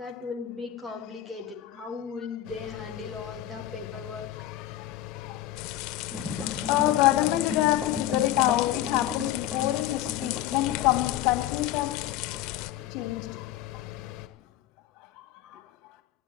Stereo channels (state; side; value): quieter; right; 13.1 dB